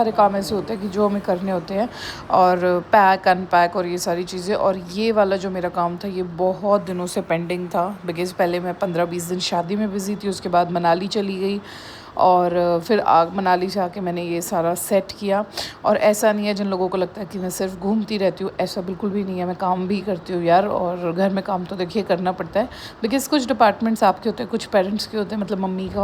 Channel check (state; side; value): identical; both; correlation 1.00